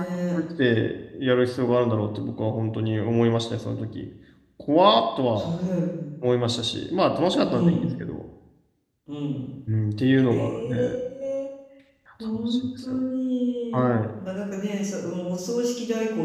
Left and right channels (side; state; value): both; identical; correlation 1.00